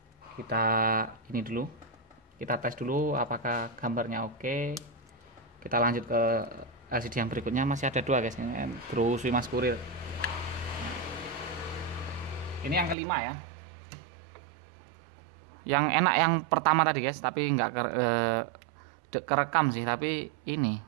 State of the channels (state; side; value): drops out; left; at 13.0 s